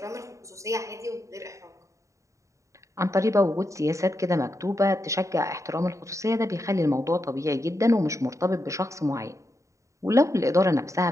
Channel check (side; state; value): left; late; 0.15 ms